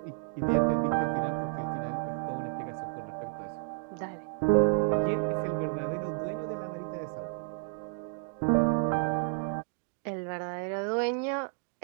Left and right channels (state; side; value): silent; left; 57 dB below the other